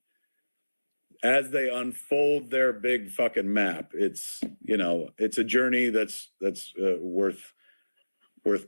as they unfold their big fucking map, it's a journey that's worth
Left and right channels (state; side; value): inverted; both; correlation -1.00